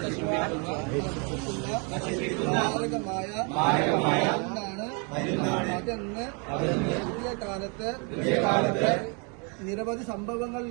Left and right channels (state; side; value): quieter; left; 34.7 dB